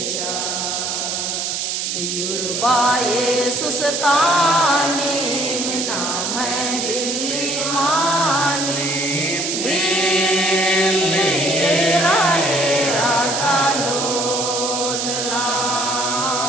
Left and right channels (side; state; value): right; noise; hiss, 2 dB below the sound